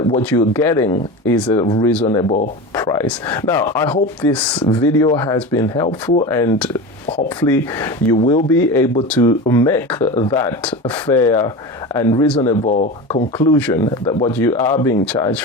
what you're getting is a reasonable price. Now, I hope this video has been helpful, and hopefully you will be able to make that fair and reasonable conclusion that what you are being charged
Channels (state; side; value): normal; both; correlation 0.27